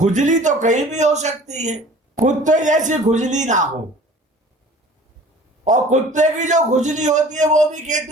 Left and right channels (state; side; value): normal; both; correlation 0.47